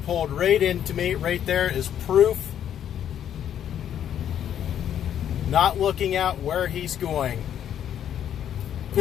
pulled right into me. Right there is proof. Not looking out where he's going.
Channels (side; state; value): right; quieter; 9.9 dB